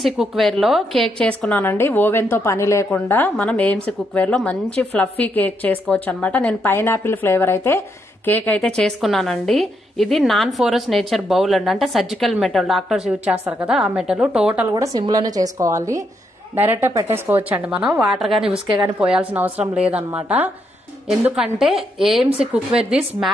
కుక్వేర్ లో కేక్ చేసుకున్నానండి. ఓవెన్ తో పని లేకుండా మనం ఏఎంసీ కుక్వేర్ లో మంచి ఫ్లఫీ కేక్ చేసుకోవచ్చు అనమాట. నేను పైనాపిల్ ఫ్లేవర్ అయితే కేక్ అయితే చేసుకున్నానండి. ఇది నాన్ ఫోరస్ నేచర్ బౌల్ అండి, అంటే సర్జికల్ మెటల్, డాక్టర్స్ యూజ్ చేస్తారు కదా ఆ మెటల్. టోటల్ కూడా సిమ్ లోనే చేసుకోవాలి, డైరెక్ట్ గా పెట్టేసుకోవచ్చు అండి. మనం వాటర్ గానీ ఉసుకే గానీ పోయాల్సిన అవసరం లేదనమాట. ఎందుకంటే ఏఎంసీ కుక్వేర్ దిస్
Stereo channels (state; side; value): normal; both; correlation 0.78